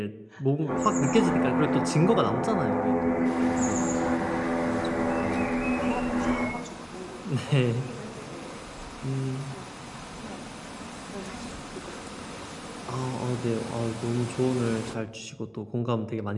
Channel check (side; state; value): both; identical; correlation 1.00